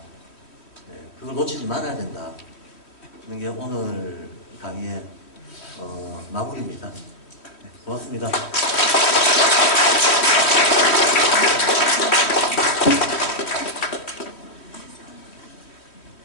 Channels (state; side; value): late; right; 3.1 ms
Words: 그걸 놓치지 말아야 된다. 그런 게 오늘 강의의 마무리입니다. 고맙습니다.